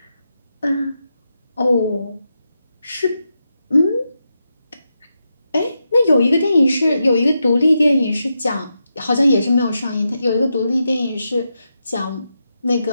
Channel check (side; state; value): both; inverted; correlation -0.86